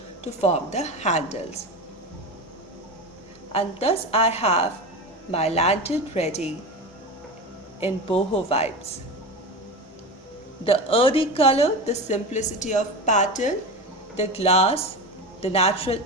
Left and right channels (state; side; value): normal; both; correlation 0.25